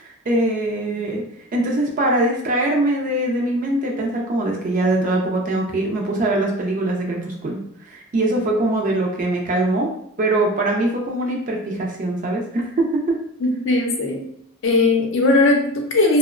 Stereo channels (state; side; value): normal; both; correlation 0.35